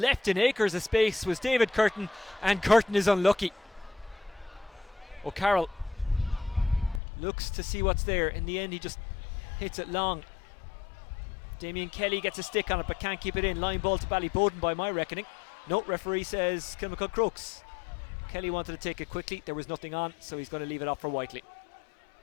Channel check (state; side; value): drops out; right; at 7.0 s